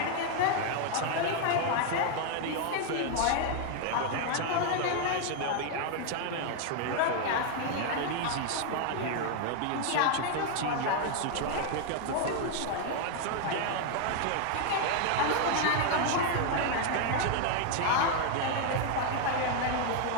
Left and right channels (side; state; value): both; different; correlation 0.00